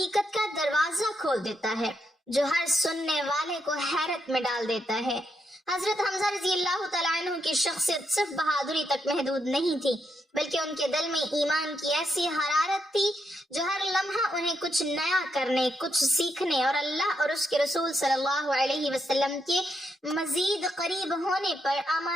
کا دروازہ کھول دیتا ہے جو ہر سننے والے کو حیرت میں ڈال دیتا ہے۔ حضرت حمزہ رضی اللہ تعالیٰ عنہ کی شخصیت صرف بہادری تک محدود نہیں تھی، بلکہ ان کے دل میں ایمان کی ایسی حرارت تھی جو ہر لمحہ انہیں کچھ نیا کرنے، کچھ سیکھنے اور اللہ اور اس کے رسول صلی اللہ علیہ وسلم کے مزید قریب ہونے پر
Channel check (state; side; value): normal; both; correlation 0.80